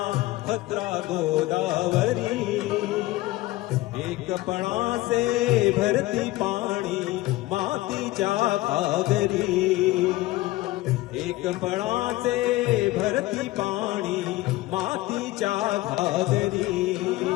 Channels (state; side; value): quieter; right; 18.3 dB